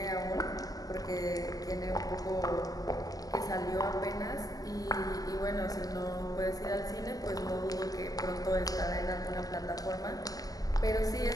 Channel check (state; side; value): late; right; 0.18 ms